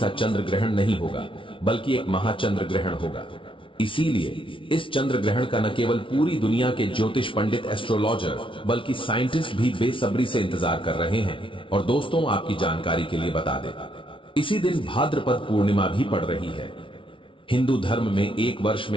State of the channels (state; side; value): late; right; 0.25 ms